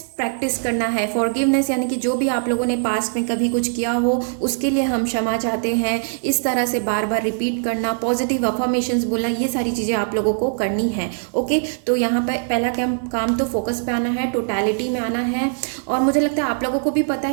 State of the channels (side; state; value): left; silent; 65 dB below the other